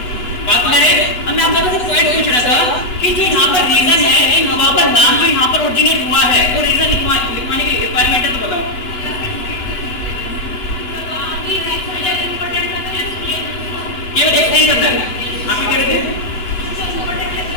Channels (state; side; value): late; right; 8.0 ms